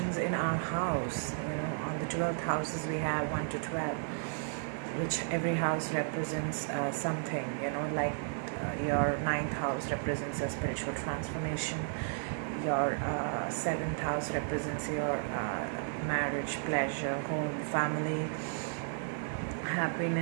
in our house, on the 12th houses we have 1 to 12, which every house represents something, like your ninth house represents a spiritual transformation, your seventh house represents your marriage, pleasure, home, family,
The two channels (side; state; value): left; silent; digital silence